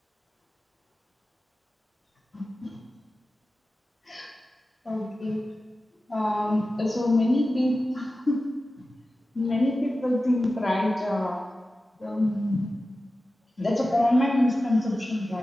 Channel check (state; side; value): normal; both; correlation 0.94